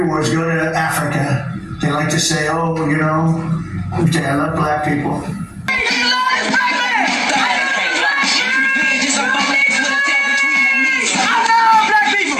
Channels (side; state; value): both; identical; correlation 1.00